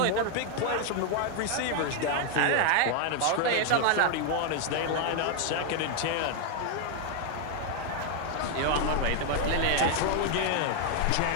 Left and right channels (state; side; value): different; both; correlation 0.00